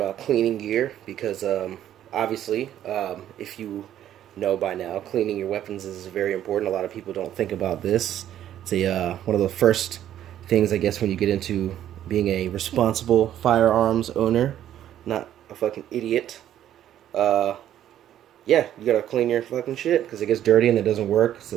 cleaning gear because obviously, if you know by now, cleaning your weapons is very important. A lot of people don't think about this. It's one of the first things, I guess, when you get into being a responsible firearms owner, not a fucking idiot. Uh, yeah, you gotta clean your fucking shit because it gets dirty and it doesn't work.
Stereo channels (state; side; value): quieter; left; 11.4 dB